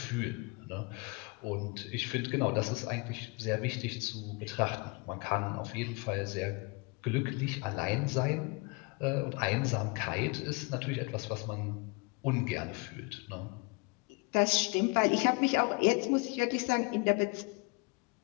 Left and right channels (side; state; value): right; quieter; 28.8 dB